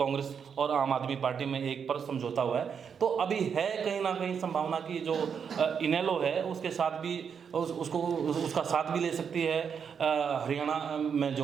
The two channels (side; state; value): left; quieter; 6.9 dB